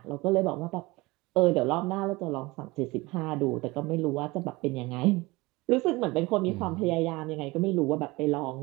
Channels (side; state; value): left; quieter; 22.3 dB